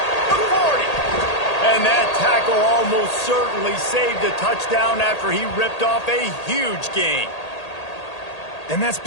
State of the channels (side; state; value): right; late; 1.8 ms